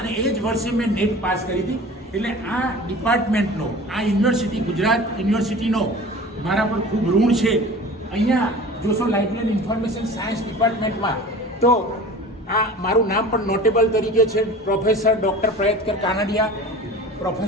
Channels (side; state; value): both; normal; correlation 0.40